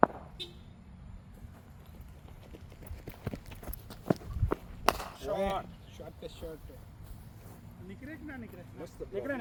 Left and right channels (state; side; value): identical; both; correlation 1.00